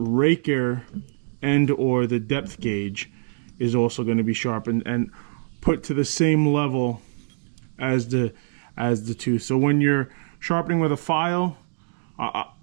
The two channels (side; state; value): left; silent; digital silence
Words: and or the depth gauge is also going to be sharpened and put to the same level as the tooth. So when you're sharpening with a file,